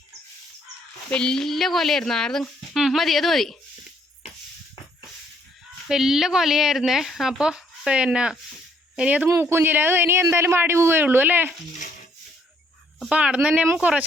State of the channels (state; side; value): normal; both; correlation 0.68